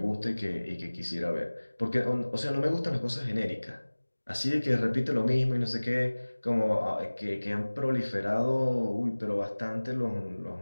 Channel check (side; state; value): both; inverted; correlation -1.00